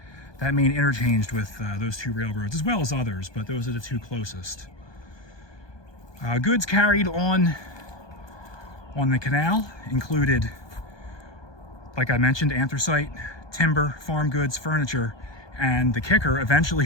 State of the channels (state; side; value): late; right; 1.2 ms